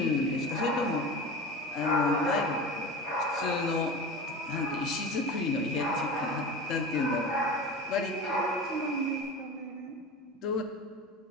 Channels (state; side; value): normal; both; correlation 0.31